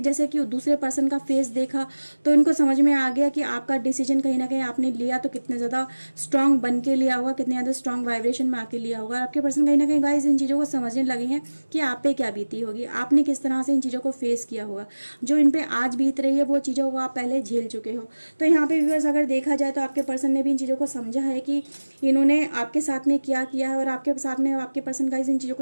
कि दूसरे पर्सन का फेस देखा तो उनको समझ में आ गया कि आपका डिसीजन कहीं ना कहीं आपने लिया तो कितने ज़्यादा स्ट्रांग बन के लिया होगा, कितने ज़्यादा स्ट्रांग वाइब्रेशन में आके लिया होगा। और आपके पर्सन कहीं ना कहीं गाइस इन चीज़ों को समझने लगे हैं कि आप पे क्या बीती होगी, आपने किस तरह से इन चीज़ों को फेस किया होगा, जो इन पर आज बीत रही है वो चीज़ों को आप पहले झेल चुके हो। तो यहाँ पे व्यूअर्स अगर देखा जाए तो आपके पर्सन ने भी इन चीज़ों को समझा है कि इन्होंने आपके साथ में क्या किया है, और आपके साथ में आपके पर्सन गाइस इन चीज़ों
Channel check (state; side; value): inverted; both; correlation -1.00